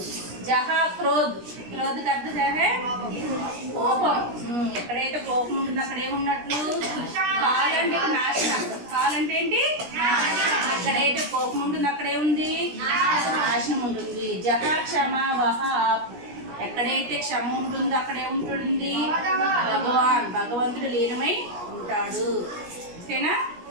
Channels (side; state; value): left; late; 17 ms